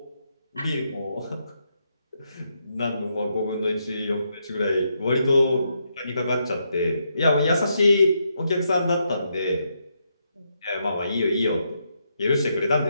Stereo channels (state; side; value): inverted; both; correlation -0.80